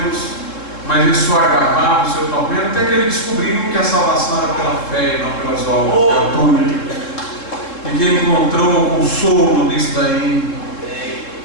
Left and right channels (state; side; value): late; right; 3.7 ms